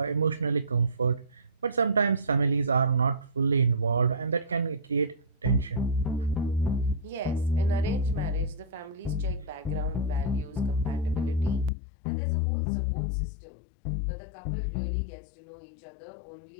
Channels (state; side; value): drops out; right; at 11.7 s